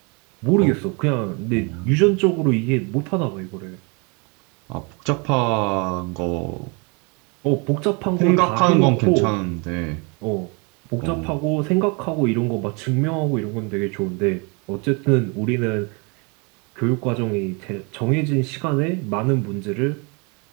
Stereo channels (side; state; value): left; quieter; 31.8 dB